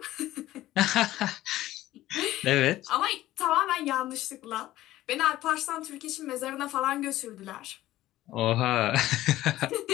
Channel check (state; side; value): quieter; right; 15.3 dB